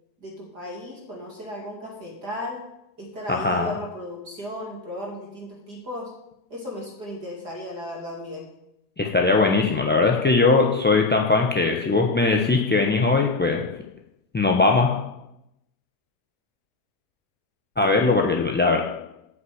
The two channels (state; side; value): quieter; right; 3.3 dB